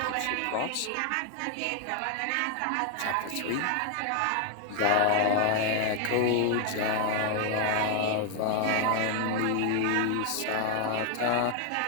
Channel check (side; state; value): both; different; correlation 0.00